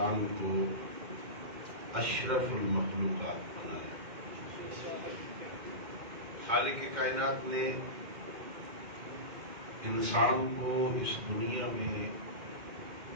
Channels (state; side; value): late; left; 2.3 ms